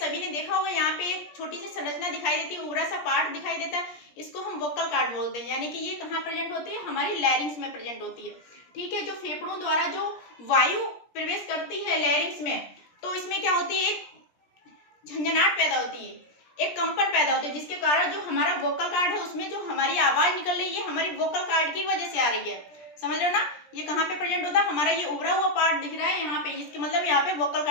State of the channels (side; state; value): right; late; 17 ms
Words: ने देखा होगा, यहाँ पे एक छोटी सी संरचना दिखाई देती है, उभरा सा पार्ट दिखाई देता है, इसको हम वोकल कार्ड बोलते हैं, यानी कि ये कहाँ प्रेजेंट होती है, हमारी लैरिंग्स में प्रेजेंट होती है। ठीक है, जो फेफड़ों द्वारा जो वायु प्रवेश करती है लैरिंग्स में, तो इसमें क्या होती है, एक झंझनाहट पैदा होती है, एक कंपन पैदा होती है, जिसके कारण जो हमारा वोकल कार्ड है उसमें जो हमारी आवाज निकल रही है हमारी वोकल कार्ड की वजह से आ रही है। समझ रहे हो ना, ये कहाँ पे प्रेजेंट होता है, हमारा ये उभरा हुआ पार्ट दिख रहा है यहाँ पे, इसके मतलब यहाँ पे वोकल